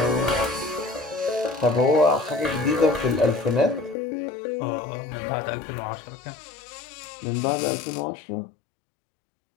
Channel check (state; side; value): drops out; right; at 4.0 s